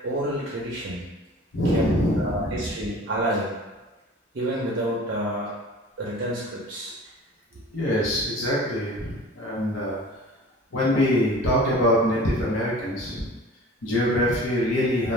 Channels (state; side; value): normal; both; correlation 0.44